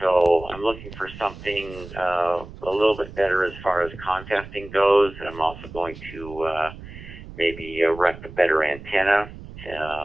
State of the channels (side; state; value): right; noise; rumble, 15 dB below the sound